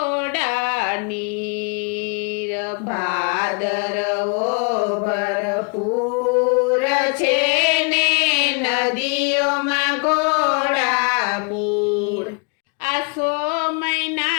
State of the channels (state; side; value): quieter; right; 34.5 dB